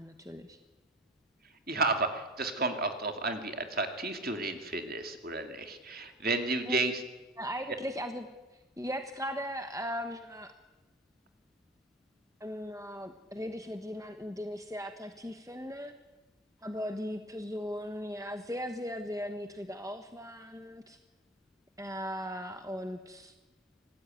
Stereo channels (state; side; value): normal; both; correlation 0.34